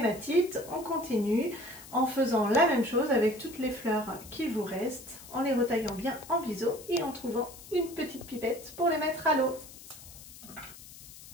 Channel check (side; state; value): left; noise; hiss, 17 dB below the sound